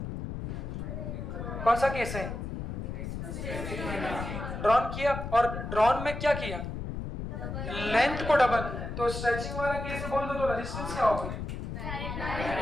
कौन सा केस है? ड्रॉन किया। और ड्रॉन में क्या किया? लेंथ को डबल। तो स्ट्रेचिंग वाला केस बोल दो तो रेजिस्टेंस क्या होगा?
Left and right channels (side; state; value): left; noise; rumble, 6 dB below the sound